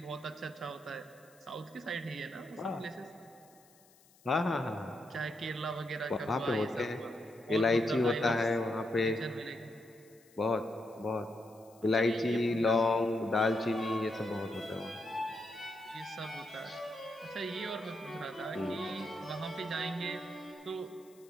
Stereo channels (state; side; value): noise; left; hiss, 28 dB below the sound